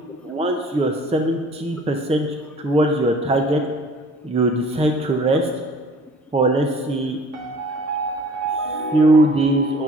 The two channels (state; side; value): normal; both; correlation 0.49